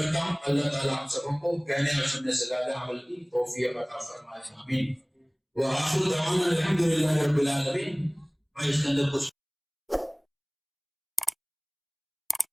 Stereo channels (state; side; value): identical; both; correlation 1.00